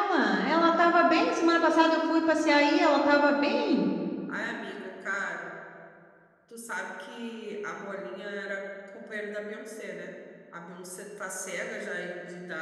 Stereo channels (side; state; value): both; identical; correlation 1.00